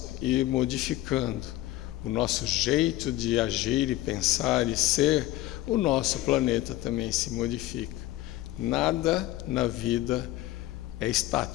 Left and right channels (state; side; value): quieter; right; 16.1 dB